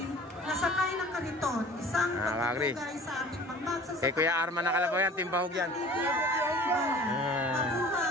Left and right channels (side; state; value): both; normal; correlation 0.44